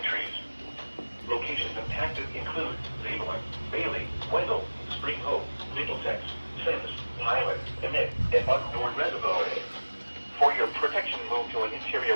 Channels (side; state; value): both; inverted; correlation -1.00